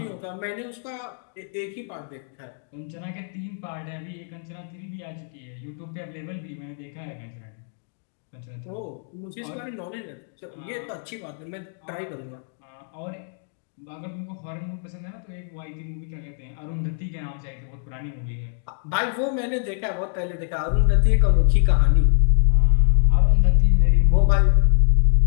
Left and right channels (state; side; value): silent; right; digital silence